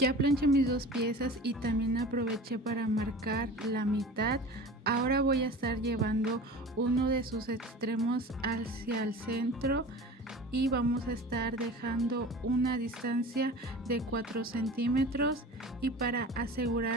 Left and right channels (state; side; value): normal; both; correlation 0.37